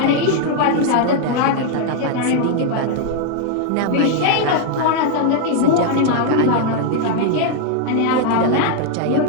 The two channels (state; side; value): different; both; correlation 0.00